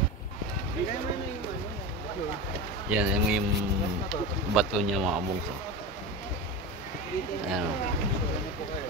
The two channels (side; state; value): both; normal; correlation 0.24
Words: Yan, yung bato niya mga bungso. Ayan.